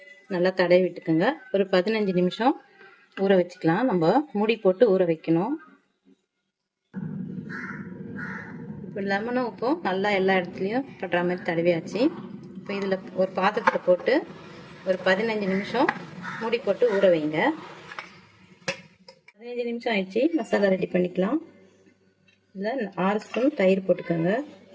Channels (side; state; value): both; identical; correlation 1.00